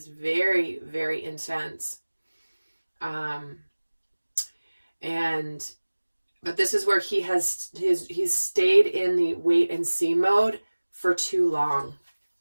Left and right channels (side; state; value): both; inverted; correlation -1.00